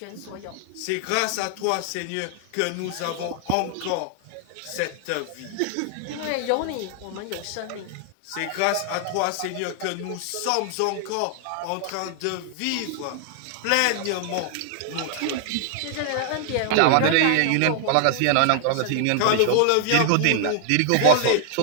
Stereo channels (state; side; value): different; both; correlation 0.00